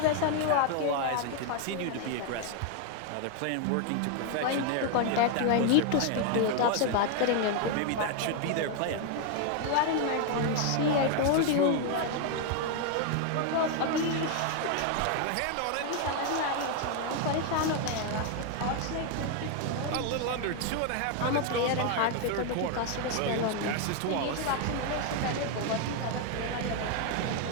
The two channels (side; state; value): both; different; correlation 0.01